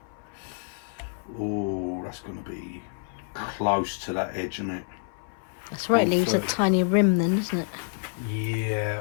Oh, that's going to be close to that edge, isn't it? That's right, it leaves a 130. tiny rim then, isn't it? Yeah.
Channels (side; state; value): right; silent; 58 dB below the other